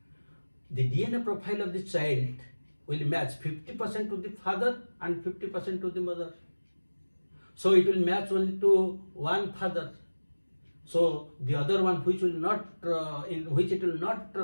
The DNA profile of the child will match 50% to the father and 50% to the mother. So it will match only to one father. So the other one which will not, in which it will not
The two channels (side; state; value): both; inverted; correlation -1.00